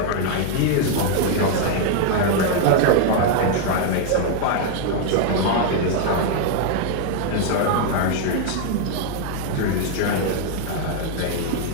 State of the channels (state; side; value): different; both; correlation 0.00